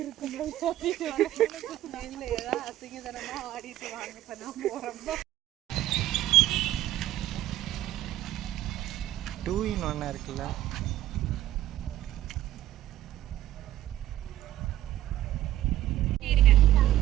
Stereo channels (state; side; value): quieter; left; 13.5 dB